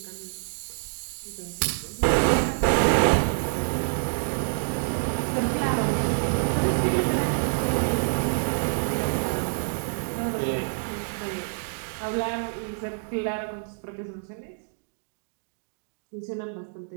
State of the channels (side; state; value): left; silent; digital silence